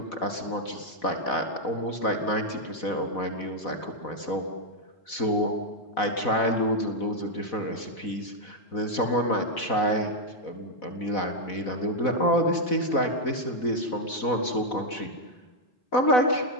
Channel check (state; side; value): late; right; 4.0 ms